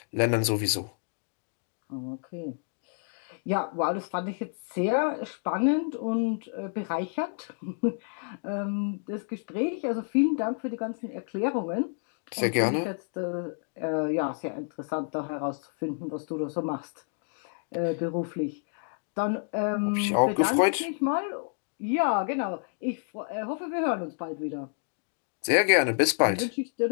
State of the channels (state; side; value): silent; right; 58 dB below the other